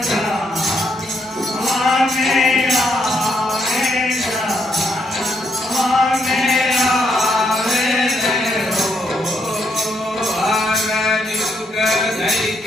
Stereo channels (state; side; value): normal; both; correlation 0.76